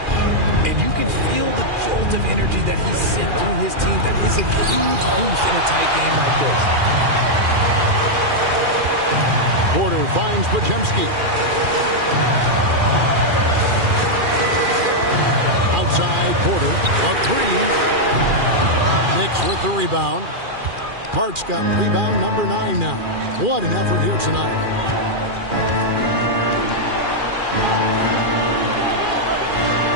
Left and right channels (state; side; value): late; left; 2.4 ms